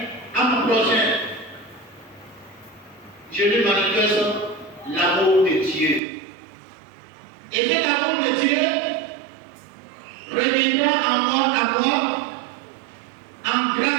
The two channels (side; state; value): left; drops out; at 6.0 s